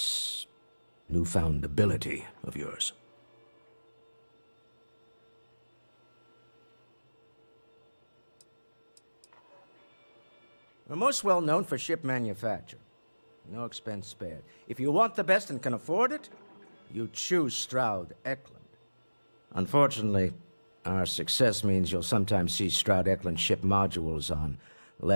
newfound ability of yours. We're most well known for ship manufacture. No expense spared. If you want the best and can afford it, you choose Stroud Eklund. Unfortunately, our success means you'll sometimes see Stroud Eklund ship modules on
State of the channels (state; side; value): inverted; both; correlation -1.00